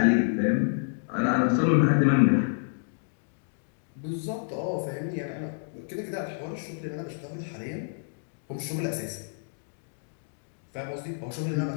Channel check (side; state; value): right; silent; digital silence